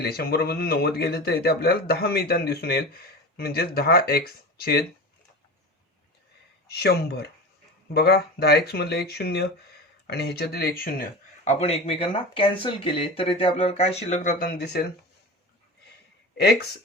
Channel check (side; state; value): both; normal; correlation 0.30